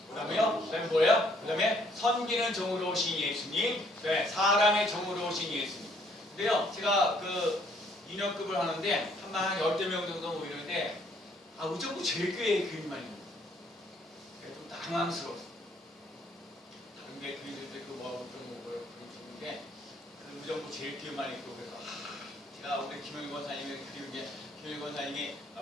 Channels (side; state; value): both; normal; correlation 0.65